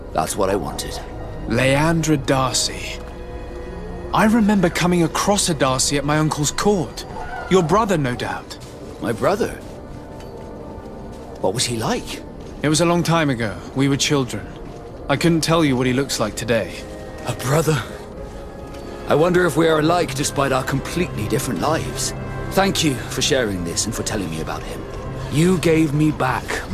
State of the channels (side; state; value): both; identical; correlation 1.00